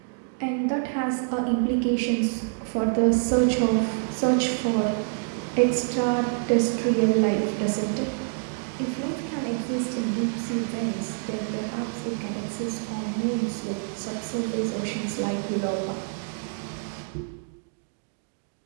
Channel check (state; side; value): silent; left; 60 dB below the other